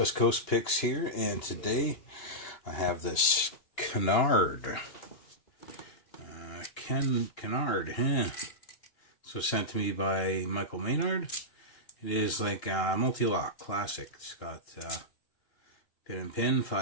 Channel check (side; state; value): right; late; 2.9 ms